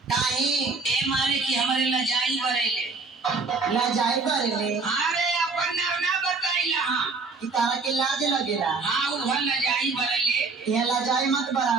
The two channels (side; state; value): left; quieter; 4.2 dB